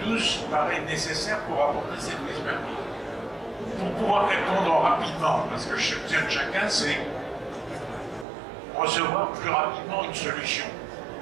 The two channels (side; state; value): left; drops out; at 8.2 s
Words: tous paraît nécessaire pour apporter cette expertise. Pour pouvoir répondre rapidement, parce que chacun, c'est recevoir plus rapidement une solution.